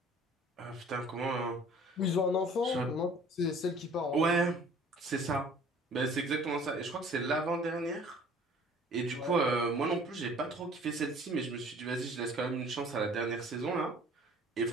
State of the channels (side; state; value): both; normal; correlation 0.51